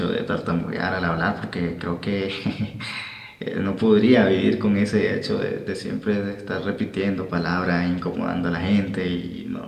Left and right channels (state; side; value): identical; both; correlation 1.00